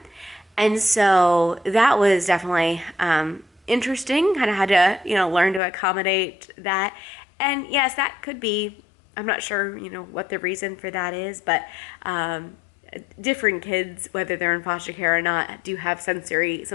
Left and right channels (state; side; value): drops out; right; at 5.6 s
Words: And so that was definitely interesting. Kind of had to, learn to accommodate that. And yes, that could be, I'm not sure, what the reason for that is, but different kids, whether they're in foster care or not, do have some